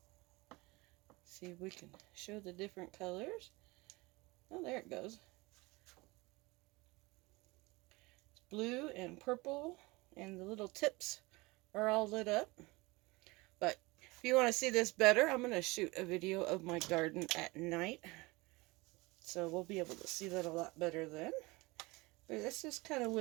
See if we can show the different colors. Oh, there it goes. It's blue and purple, and the little tips are all lit up. But if you want to see this better, I'm going to shoot a video of my garden at night. So we'll be able to see that a lot better then. But this is kind of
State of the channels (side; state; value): left; quieter; 23.5 dB